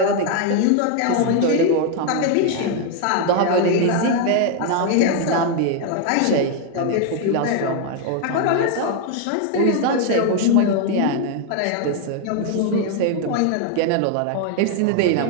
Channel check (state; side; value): different; both; correlation 0.00